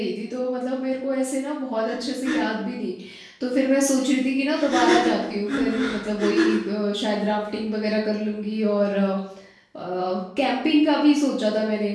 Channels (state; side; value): identical; both; correlation 1.00